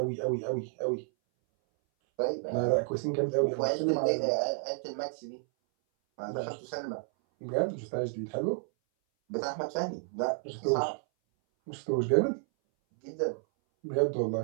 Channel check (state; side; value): silent; left; 57 dB below the other